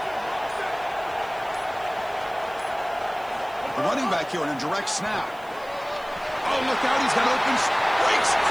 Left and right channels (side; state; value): right; noise; hiss, 25 dB below the sound